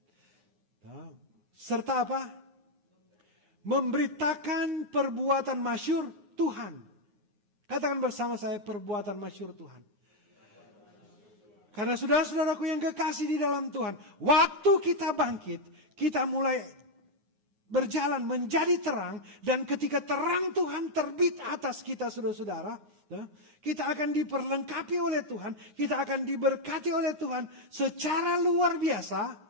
Serta apa? Memberitakan perbuatan masyhur Tuhan. Katakan bersama saya perbuatan masyhur Tuhan. Karena saudara-saudaraku yang kekasih di dalam Tuhan. Waktu kita bangkit, kita mulai berjalan menjadi terang. Dan ketika terang Tuhan terbit atas kita saudara-saudara. Kita akan diperlengkapi oleh Tuhan. Kita akan diberkati oleh Tuhan secara luar biasa.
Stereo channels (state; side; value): late; left; 9.4 ms